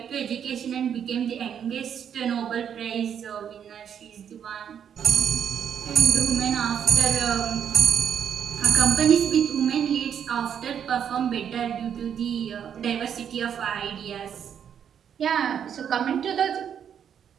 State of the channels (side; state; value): left; quieter; 8.5 dB